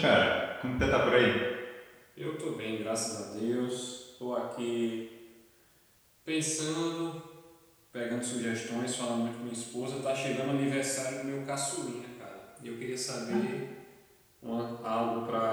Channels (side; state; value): both; identical; correlation 1.00